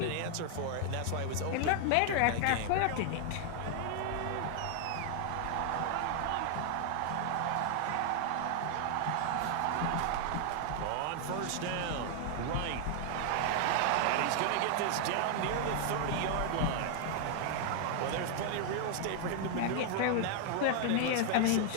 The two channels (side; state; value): both; different; correlation 0.00